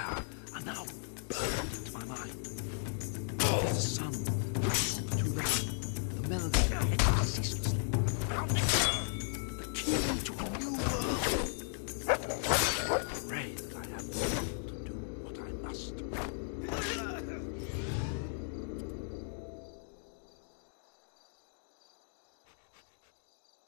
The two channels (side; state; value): right; silent; digital silence